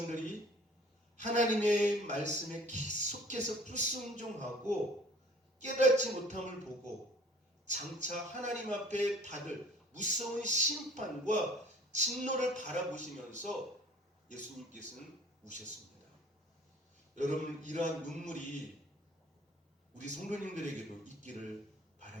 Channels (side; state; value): both; normal; correlation 0.51